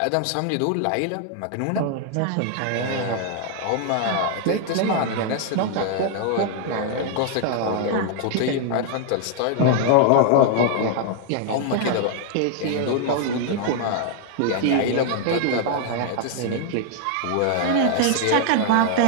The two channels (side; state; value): both; different; correlation 0.00